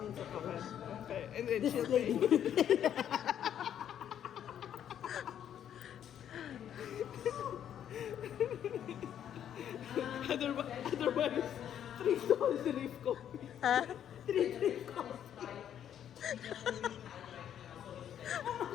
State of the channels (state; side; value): quieter; right; 9.8 dB